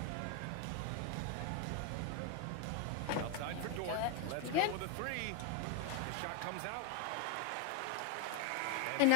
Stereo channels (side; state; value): both; different; correlation 0.01